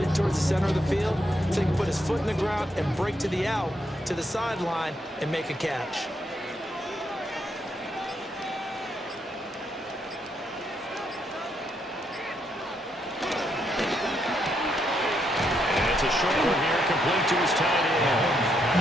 towards the center of the field so he can put his foot in the ground and break to the out, to the sideline, and make a catch. It's a short one here, complete to his tight end.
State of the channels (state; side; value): normal; both; correlation 0.77